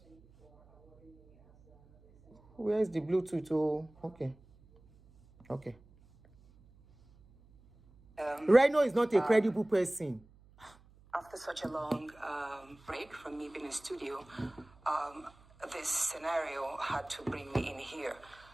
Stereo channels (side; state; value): right; noise; hum, 27 dB below the sound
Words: Where's the Bluetooth? Oh, okay. Reno is not a credible person. After such a long break from me being in studio, this scenario had to bring me in here.